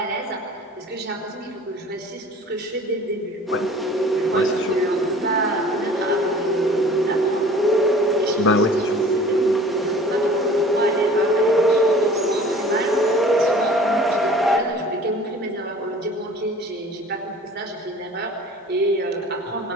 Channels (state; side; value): normal; both; correlation 0.47